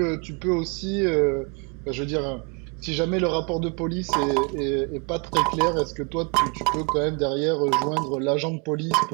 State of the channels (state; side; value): quieter; left; 32.4 dB